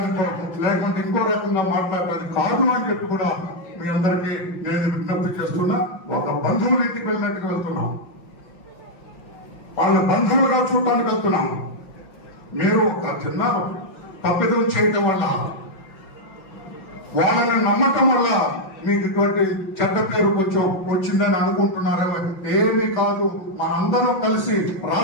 లేకుంటే ఇంకో రకంగా మాట్లాడటానికి కాదు అని చెప్పి కూడా మీ అందరికీ నేను విజ్ఞప్తి చేస్తున్నా. ఒక బంధువుల ఇంటికి వెళ్ళినట్టుగా వెళ్తున్నాం, వాళ్ళ బంధువులుగా చూడటానికి వెళ్తున్నాం. మీరు ఒక చిన్న తప్పిదం చేయటం వల్ల, వాళ్ళని నమ్మకం వల్ల మీకు ఇటువంటి చెడ్డ పేరు కొంచెం వచ్చిందని అనుకుంటున్నారేమో. ఏమీ కాదు. మనందరం కలిసి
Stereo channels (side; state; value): right; late; 5.8 ms